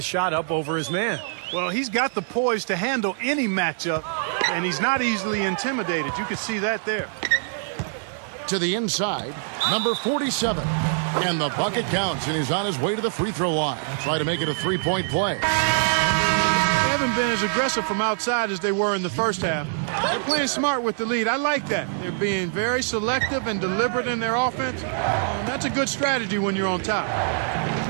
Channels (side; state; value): left; silent; digital silence